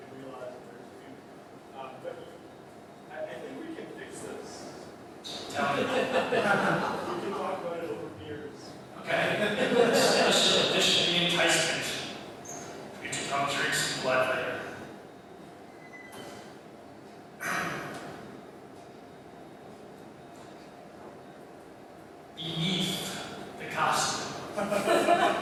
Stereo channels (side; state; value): both; identical; correlation 1.00